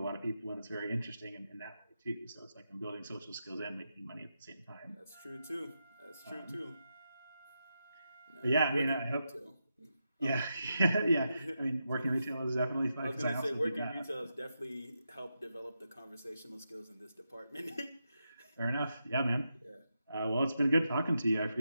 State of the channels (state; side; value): inverted; both; correlation -0.86